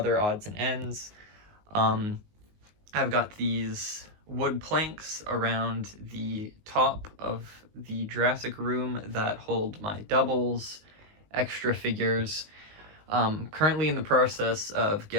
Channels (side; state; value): left; late; 19 ms